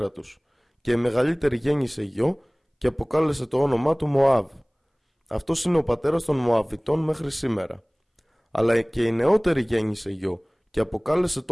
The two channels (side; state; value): both; identical; correlation 1.00